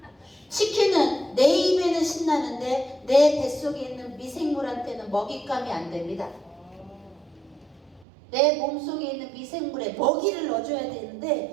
치킨은 내 입에는 신나는데 내 뱃속에 있는 미생물한테는 먹잇감이 안 됩니다. 내 몸속에 있는 미생물에 먹이를 넣어줘야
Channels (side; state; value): left; drops out; at 8.1 s